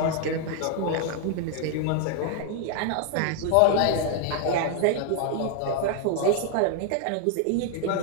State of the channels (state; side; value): different; both; correlation 0.00